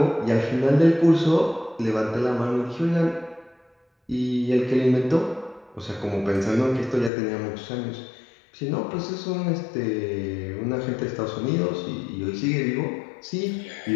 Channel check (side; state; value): right; drops out; at 7.1 s